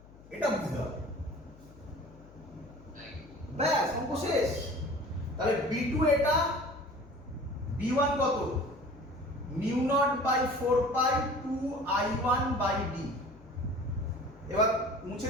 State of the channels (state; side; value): noise; left; hum, 22 dB below the sound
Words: এটা বুঝতে হবে, ব্যাস অঙ্ক শেষ। তাহলে B2 এটা, B1 কত? mu naught by 4 pi 2 I1 by D। এবার মুছে